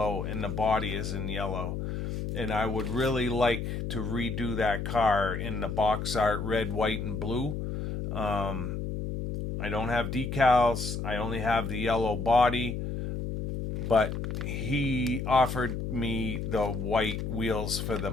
and the body is in yellow. And I would really like to redo that car in the box art red, white, and blue. I don't have decals. I only have the yellow body. But he offered me the white wheels for the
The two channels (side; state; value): left; noise; hum, 3 dB below the sound